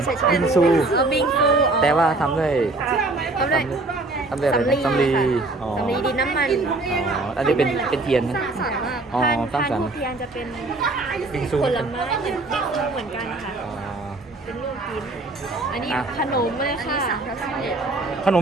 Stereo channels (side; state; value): left; quieter; 3.1 dB